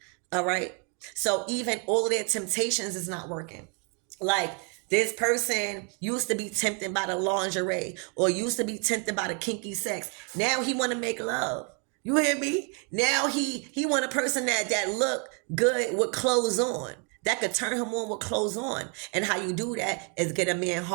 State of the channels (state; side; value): quieter; left; 36.6 dB